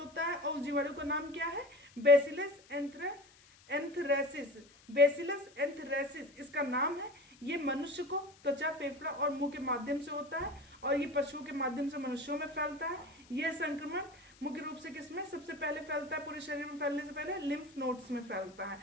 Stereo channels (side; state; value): left; noise; hiss, 26 dB below the sound